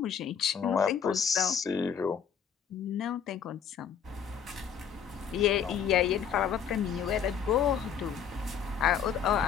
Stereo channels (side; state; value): right; quieter; 7.6 dB